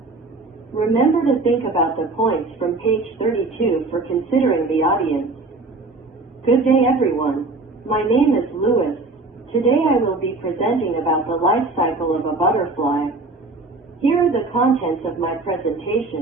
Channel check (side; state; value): left; quieter; 3.4 dB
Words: Remember to think about the points from page 32 for considering the audience. Good day, everyone. My name is Louis. Today I will be presenting about the life cycle of a butterfly. Here are the contents of my